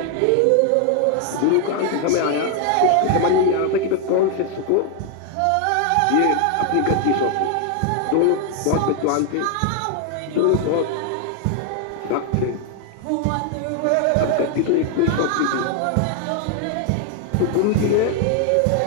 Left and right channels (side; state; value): both; different; correlation 0.00